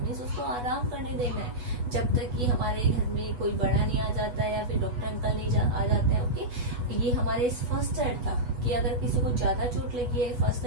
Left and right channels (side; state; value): left; late; 8.2 ms